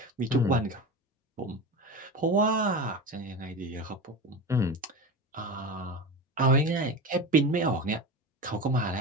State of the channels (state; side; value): normal; both; correlation 0.26